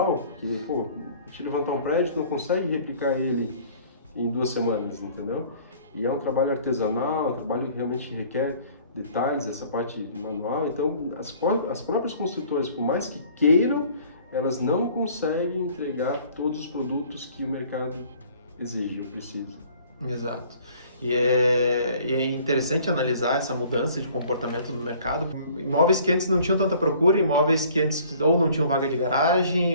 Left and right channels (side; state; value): both; inverted; correlation -0.53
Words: que, pô, a gente levantar um prédio não consegue replicar ele em 2 semanas, entendeu? E é um trabalho artesanal, um trabalho que realmente requer detalhes, essa parte manual. Então, as próprias construtoras, por mais que queiram, elas não conseguem entregar todos os produtos que o mercado exige ou precisa. Exato. E é interessante analisar essa mudança de comportamento no mercado. Imóveis que antes não tinham tanta procura, imóveis que antes ou não tinham vaga de